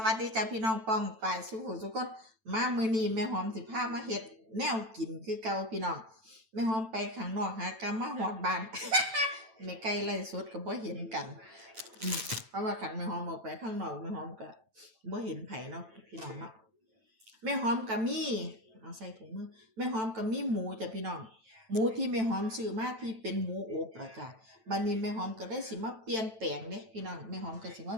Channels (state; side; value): late; left; 9.0 ms